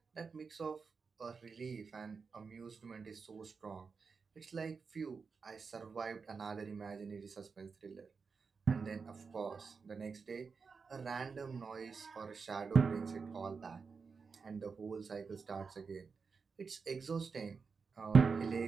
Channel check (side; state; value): left; quieter; 5.2 dB